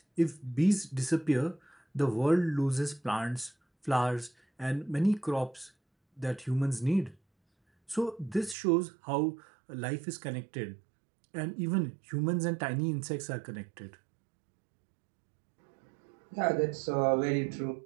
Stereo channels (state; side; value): drops out; left; at 8.6 s